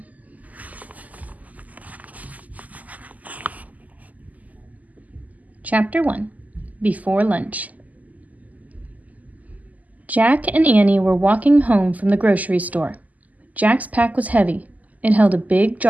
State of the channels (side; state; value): left; late; 0.077 ms